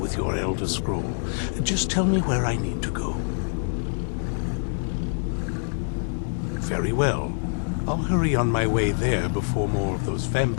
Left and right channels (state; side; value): silent; right; digital silence